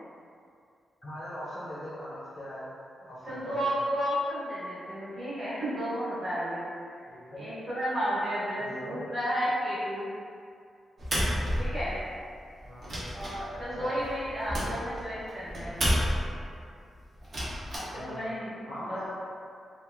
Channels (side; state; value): both; normal; correlation 0.87